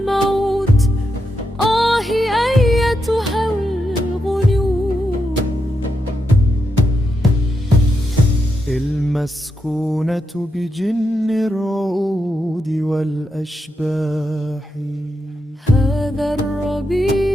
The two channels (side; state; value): both; normal; correlation 0.84